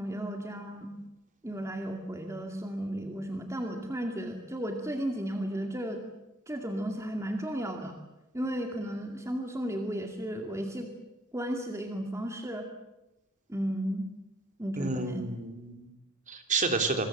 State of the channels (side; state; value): both; normal; correlation 0.61